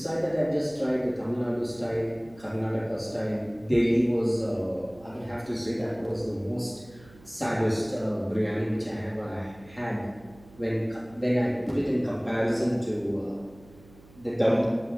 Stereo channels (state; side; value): noise; right; hum, 23 dB below the sound